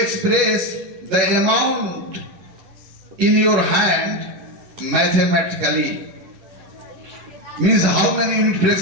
the amount in your hand mathematically, means how many unit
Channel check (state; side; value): late; left; 11 ms